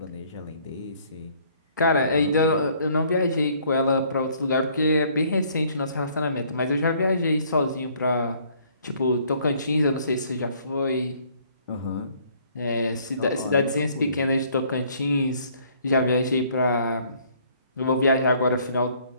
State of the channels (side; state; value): both; inverted; correlation -0.61